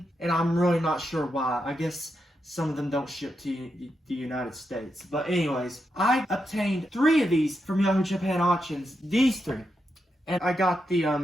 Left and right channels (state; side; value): normal; both; correlation 0.85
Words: and I'm really not sure why. I guess some of them don't ship to the United States. But anyways, I obtained 3 of these from Yahoo Japan Auctions, these 3. And I got the